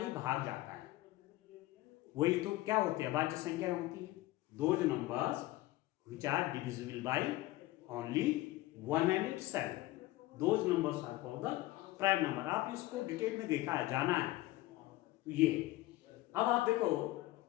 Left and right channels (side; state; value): right; quieter; 17.6 dB